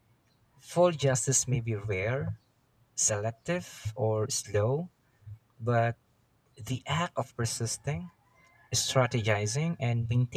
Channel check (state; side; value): identical; both; correlation 1.00